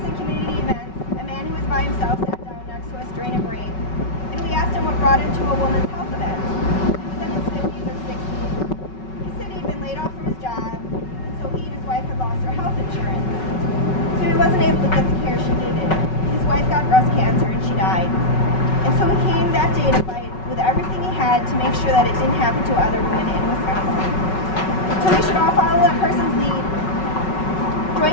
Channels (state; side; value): late; right; 5.3 ms